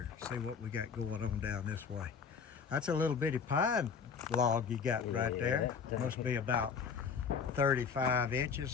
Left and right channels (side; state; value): right; quieter; 6.2 dB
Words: See what we got going on down this way. That's a little bitty pine log you got right there. Must be about 35